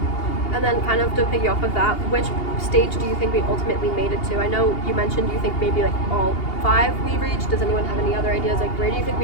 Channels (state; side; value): late; right; 2.8 ms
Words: And then kind of to piggy off of that, which stage do you think we ultimately made it to? I know you mentioned you think maybe like all 5 we reached. Does anyone have any other ideas? Like where do you think